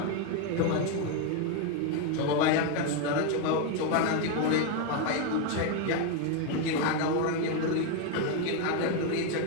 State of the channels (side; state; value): both; different; correlation 0.02